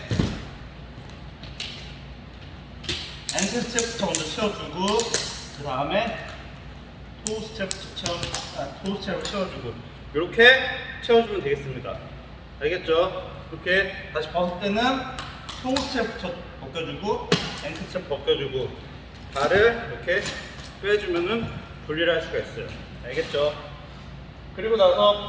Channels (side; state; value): both; identical; correlation 1.00